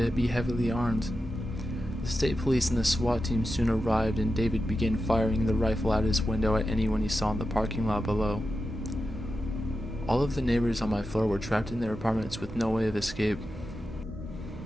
be heavily armed. The state police and the SWAT team soon arrived, and David began firing the rifle out his window at anyone he saw in the parking lot below. All of the neighbors on my floor were trapped in their apartments with no way of escape.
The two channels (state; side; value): normal; both; correlation 0.90